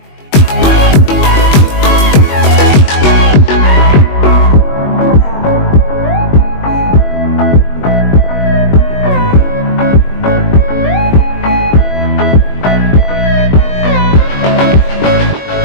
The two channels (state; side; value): late; right; 21 ms